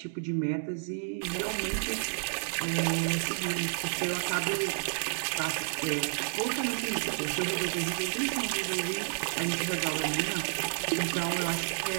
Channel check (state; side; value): silent; left; digital silence